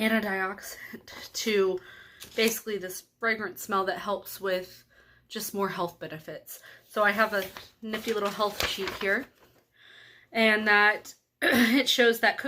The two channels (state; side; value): identical; both; correlation 1.00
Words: to basically this fragrant smell that helps with just more health benefits. So I have a nifty little health sheet here, and that it shows that